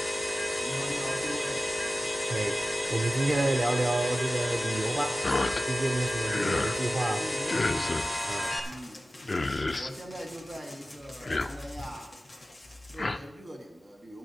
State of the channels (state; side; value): normal; both; correlation 0.95